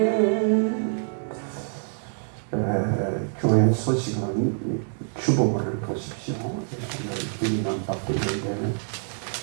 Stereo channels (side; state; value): left; silent; 61 dB below the other